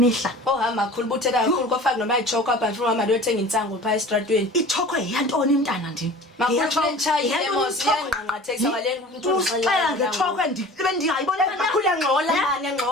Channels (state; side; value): normal; both; correlation 0.41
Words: ohamba kakhulu buthela kakhulu kwafaka noma ichoko apha mfuna mama liyothenga insango phaya estradweni ichoko yantoni mntana ndini uxela ngechoko bendingayibona makhulu engxola mani